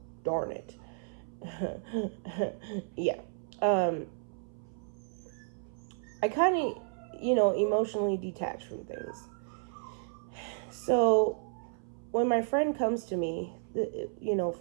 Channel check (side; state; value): left; silent; 56 dB below the other